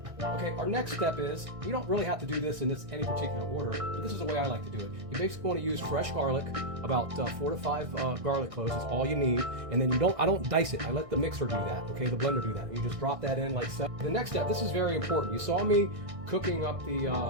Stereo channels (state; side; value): late; left; 1.6 ms